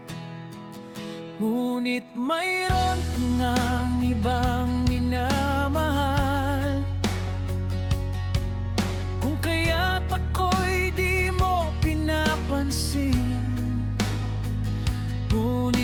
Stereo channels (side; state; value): both; identical; correlation 1.00